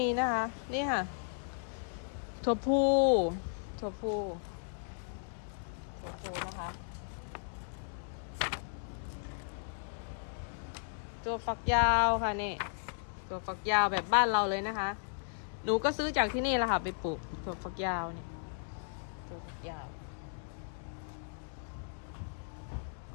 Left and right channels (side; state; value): right; silent; digital silence